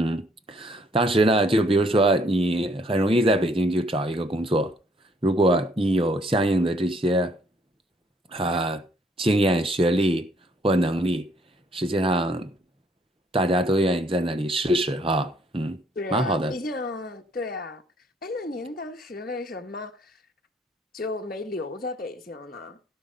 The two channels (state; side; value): normal; both; correlation 0.66